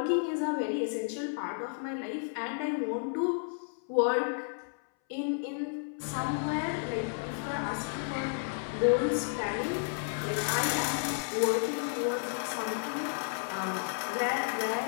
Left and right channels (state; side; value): silent; right; 56 dB below the other